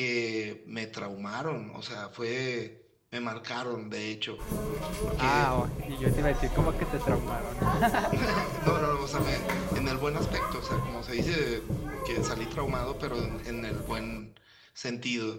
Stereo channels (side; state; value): both; identical; correlation 1.00